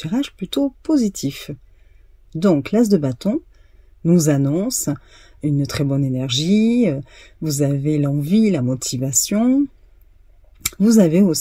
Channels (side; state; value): both; identical; correlation 1.00